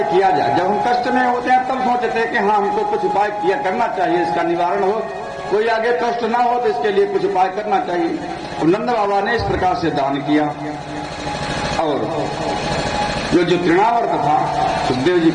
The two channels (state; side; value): identical; both; correlation 1.00